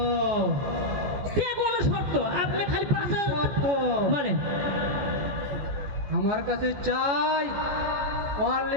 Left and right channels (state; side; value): late; left; 15 ms